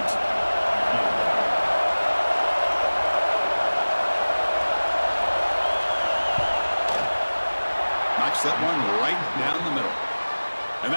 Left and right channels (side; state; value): both; inverted; correlation -1.00